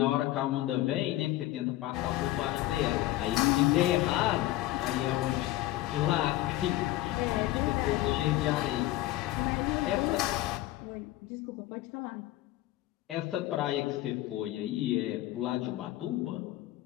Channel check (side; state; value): right; quieter; 16.0 dB